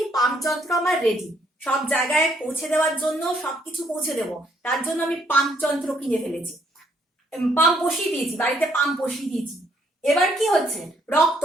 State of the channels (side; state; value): both; normal; correlation 0.69